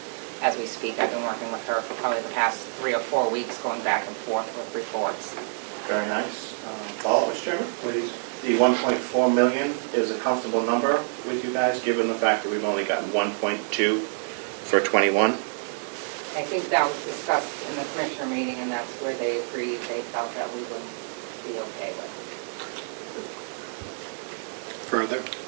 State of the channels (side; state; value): left; silent; 55 dB below the other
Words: As we speak, I've been working with her for probably the past 3 or 4 weeks, going back and forth with reports. Very nice. Follow-up, Mr. Chairman? Please. The 1.4 million is a comfortable number with you guys, given the fact that we've only gotten 1.2 for 21? I think that was discussed in the commissioner meeting, and that's where they agreed, they felt that we would be okay with. Further?